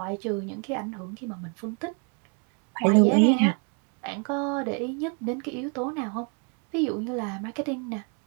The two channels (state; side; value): quieter; left; 37.7 dB